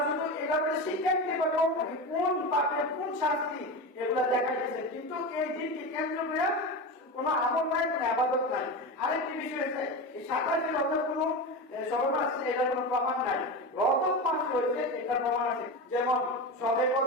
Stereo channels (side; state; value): both; normal; correlation 0.22